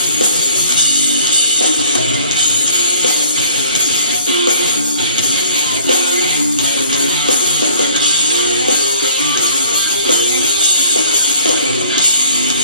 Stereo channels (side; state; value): both; inverted; correlation -0.54